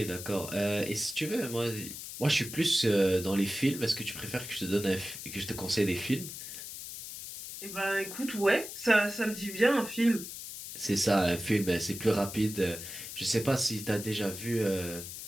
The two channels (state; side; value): noise; left; hiss, 10 dB below the sound